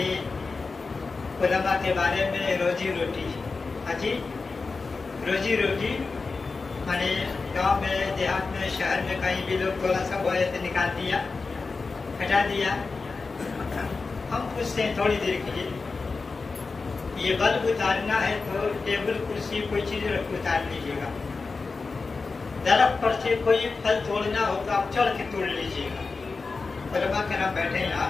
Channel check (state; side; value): quieter; right; 4.2 dB